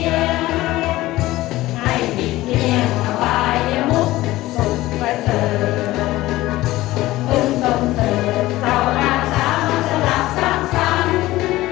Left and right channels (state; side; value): quieter; right; 17.2 dB